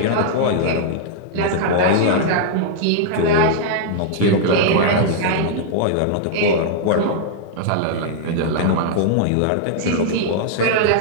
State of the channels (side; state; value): both; different; correlation -0.01